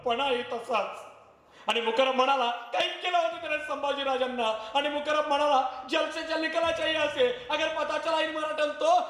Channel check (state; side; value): identical; both; correlation 1.00